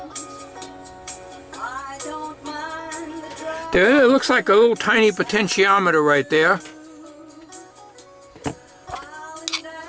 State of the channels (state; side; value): identical; both; correlation 1.00